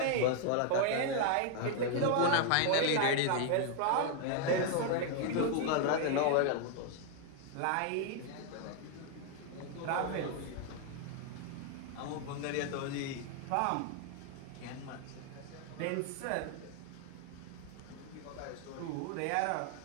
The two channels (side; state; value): both; different; correlation 0.00